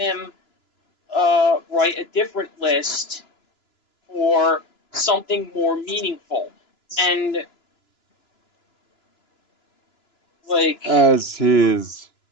write a different list for something more meaningful. And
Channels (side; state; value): right; late; 2.9 ms